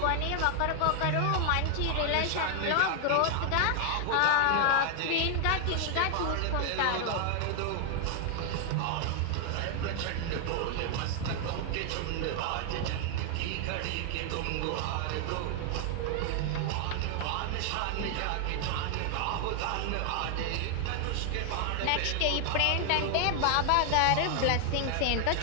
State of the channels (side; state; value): both; different; correlation 0.00